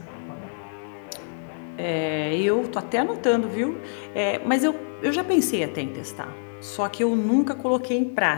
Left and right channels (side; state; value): right; silent; digital silence